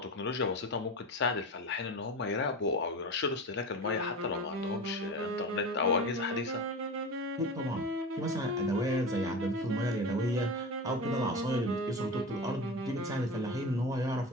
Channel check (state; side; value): normal; both; correlation 0.28